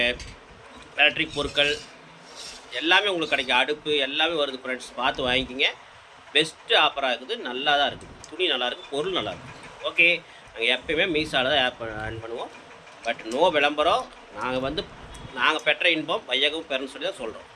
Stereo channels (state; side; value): identical; both; correlation 1.00